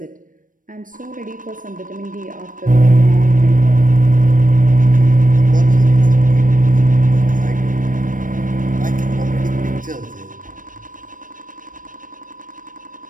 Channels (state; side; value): late; left; 0.38 ms